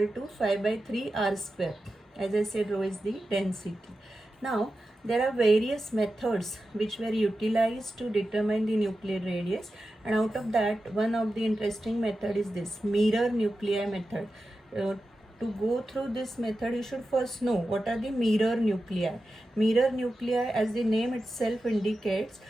to 5 by 3 r square. As I said, rho is the density. Now there are various methods which were utilized to determine the nuclear radius, and out of that, one of the interesting method is this mirror nuclei method. To go through this method, you should first know what are the mirror nuclei. Mirror nuclei, as the name itself indicates,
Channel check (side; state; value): both; normal; correlation 0.92